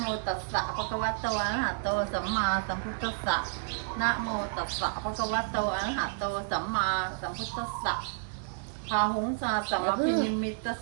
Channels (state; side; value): silent; left; digital silence